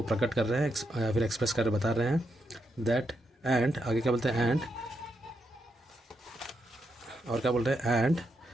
प्रकट कर रहे हैं या फिर एक्सप्रेस कर बता रहे हैं दैट। एंड आगे क्या बोलते हैं, एंड और क्या बोल रहे हैं, and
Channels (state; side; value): normal; both; correlation 0.82